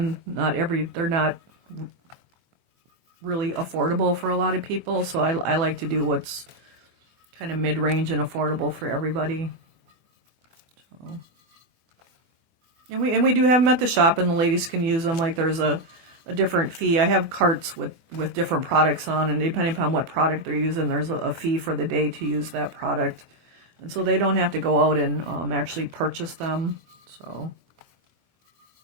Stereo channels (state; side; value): late; left; 24 ms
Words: they're not really affordable for a lot of people, so I like to do what's kind of mid-range and affordable for everybody. So, and we do have them at the shop, and the ladies can use them. Like there's a different fee. I have carts with different products on, and depending upon what product they're using, there's a fee for the day to use that product, and so they don't have to go out and actually purchase them. So